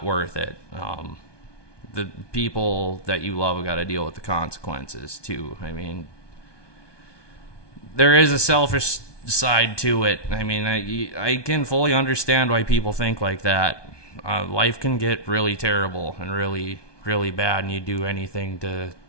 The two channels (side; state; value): right; late; 1.2 ms